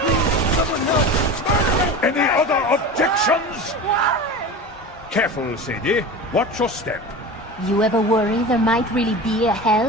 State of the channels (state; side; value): normal; both; correlation 0.31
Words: Any other objections? Careful, Sadie. Watch your step. You ever worry there might really be a